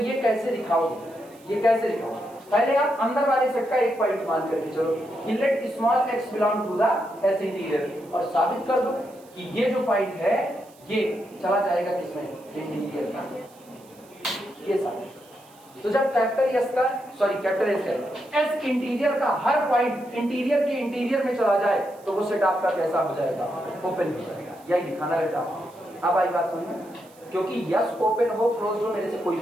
कैसे दिखाओगे? पहले आप अंदर वाले सेट का एक पॉइंट मान करके चलो कि let small x belong to the s interior और साबित कर दो कि ये जो पॉइंट है ये चला जाएगा किसमें? इंटीरियर का। ये साबित तो जब कैपिटल s इंटीरियर का हर पॉइंट इंटीरियर के इंटीरियर में चला जाए तो वो सेट आपका कैसा हो जाएगा? ओपन हो जाएगा। यही दिखाना रहता। अब आई बात समझ में? क्योंकि यस ओपन हो क्लोज हो मेरे से कोई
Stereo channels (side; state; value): right; noise; hiss, 27 dB below the sound